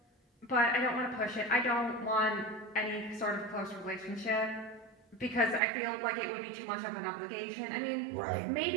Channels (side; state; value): left; drops out; at 5.6 s